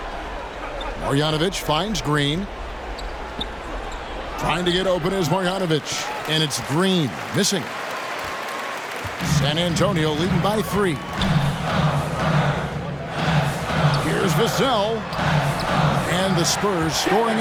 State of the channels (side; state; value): both; identical; correlation 1.00